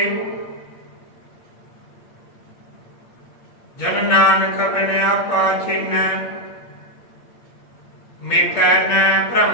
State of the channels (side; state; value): right; late; 8.5 ms